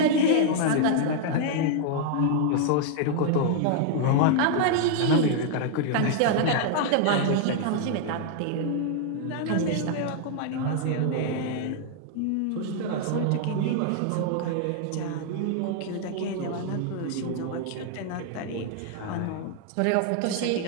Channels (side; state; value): both; different; correlation 0.00